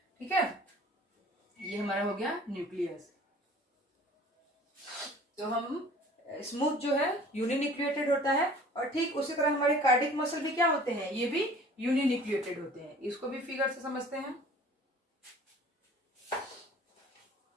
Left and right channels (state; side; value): normal; both; correlation 0.48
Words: ठीक है, ये हमारा हो गया न्यूक्लियस। तो हम स्मूथ जो है यूनिन्यूक्लिएटेड होता है, और ठीक उसी तरह हमारे कार्डिक मसल भी क्या होते हैं, ये भी यूनिन्यूक्लिएटेड होते हैं। इसको भी फिगर से समझते हैं।